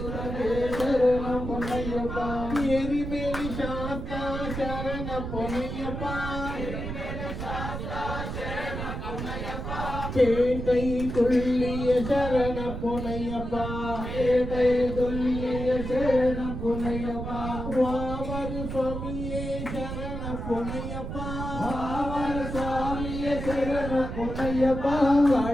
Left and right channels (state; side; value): noise; right; rumble, 6 dB below the sound